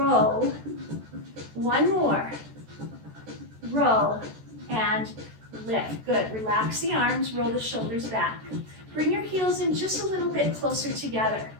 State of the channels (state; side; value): late; left; 14 ms